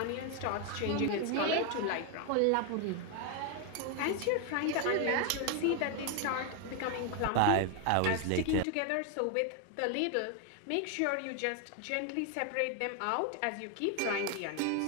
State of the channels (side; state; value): both; different; correlation 0.01